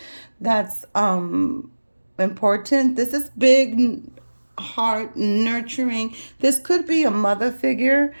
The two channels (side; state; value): both; inverted; correlation -1.00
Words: That's important. This is big, heart, nurturing. This could be a mother figure.